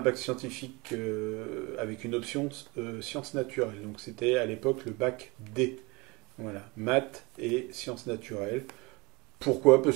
scientifique avec une option sciences naturelles. Donc, c'était à l'époque le bac D. Voilà, maths et sciences naturelles. Pourquoi?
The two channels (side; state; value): left; quieter; 25.6 dB